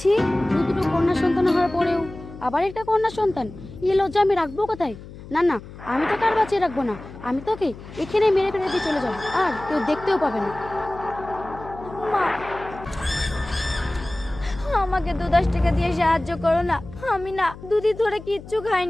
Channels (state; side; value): noise; left; hum, 16 dB below the sound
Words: দুটো কন্যা সন্তান হওয়ার পরেও আবার একটা কন্যা সন্তান, এই লজ্জা আমি রাখবো কোথায়? না না, আমি তোকে আর বাঁচিয়ে রাখবো না, আমি তোকে এখানে মেরে ফেলে দিয়ে চলে যাবো, আর কেউ দেখতেও পাবে না। মা, আমাকে 2-10 টাকা দিয়ে সাহায্য করো না, আমি না দুদিন ধরে কিচ্ছু